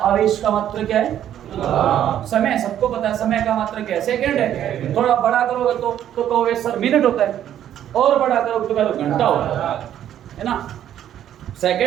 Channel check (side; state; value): left; quieter; 10.8 dB